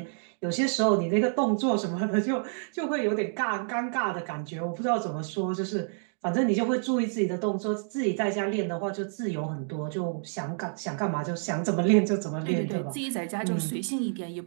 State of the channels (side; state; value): left; silent; digital silence